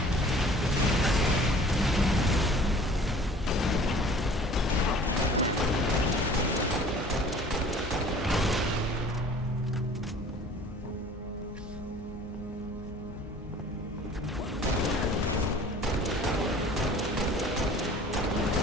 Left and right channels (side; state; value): both; normal; correlation 0.48